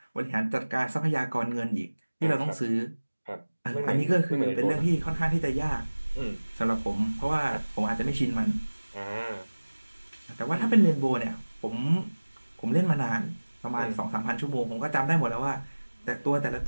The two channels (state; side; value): inverted; both; correlation -1.00